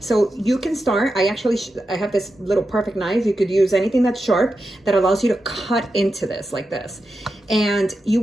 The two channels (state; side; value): normal; both; correlation 0.89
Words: you can start, I have this little perfect knife. You could use anything that's sharp that allows you to cut into this like this. And you